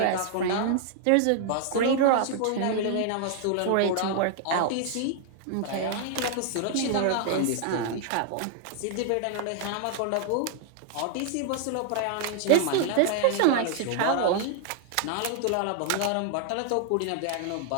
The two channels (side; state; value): both; different; correlation 0.00